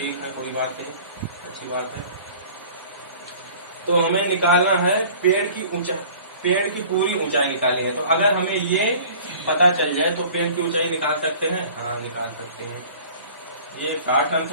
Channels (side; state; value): both; inverted; correlation -0.47